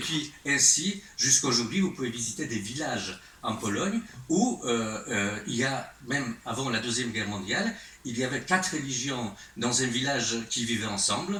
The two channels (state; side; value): identical; both; correlation 1.00